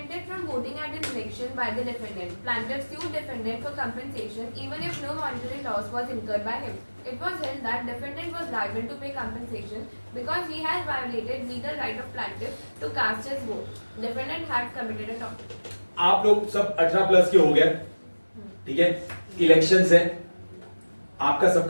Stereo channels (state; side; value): inverted; both; correlation -1.00